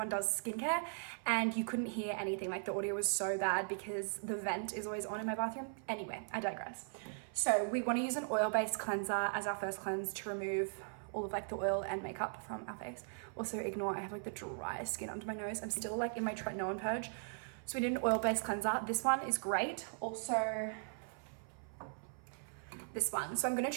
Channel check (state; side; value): silent; left; 52 dB below the other